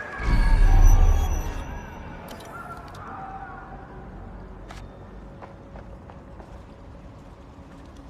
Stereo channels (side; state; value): both; identical; correlation 1.00